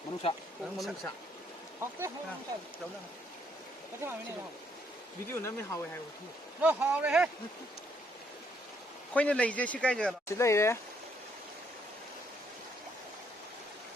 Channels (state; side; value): normal; both; correlation 0.70